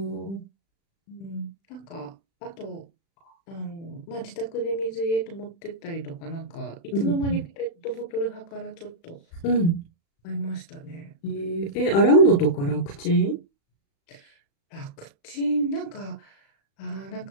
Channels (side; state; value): right; late; 36 ms